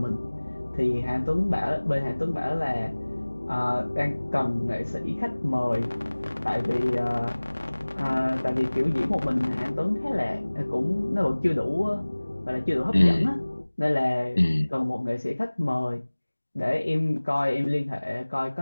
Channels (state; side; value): inverted; both; correlation -1.00